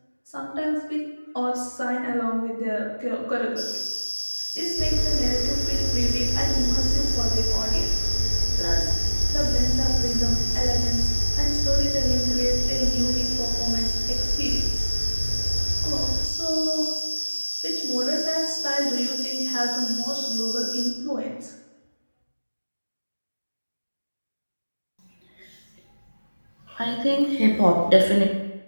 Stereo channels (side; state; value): both; inverted; correlation -1.00